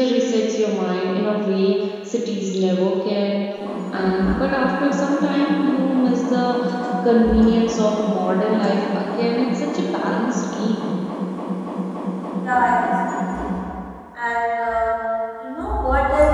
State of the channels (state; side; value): identical; both; correlation 1.00